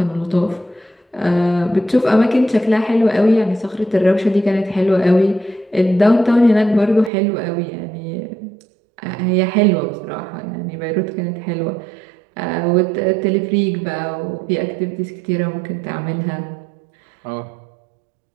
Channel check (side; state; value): left; drops out; at 7.1 s